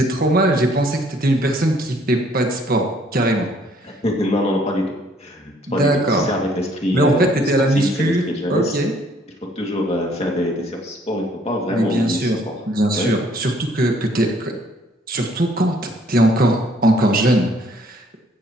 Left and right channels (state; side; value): normal; both; correlation 0.62